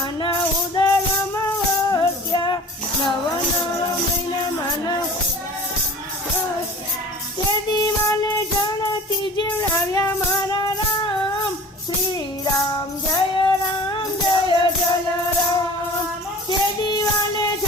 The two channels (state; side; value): normal; both; correlation 0.42